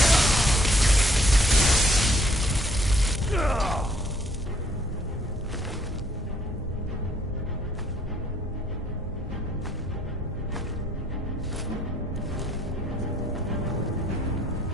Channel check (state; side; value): normal; both; correlation 0.65